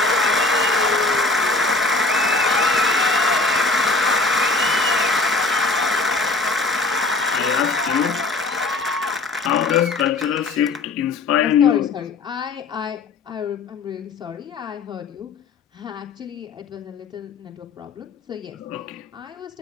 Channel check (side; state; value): right; quieter; 3.7 dB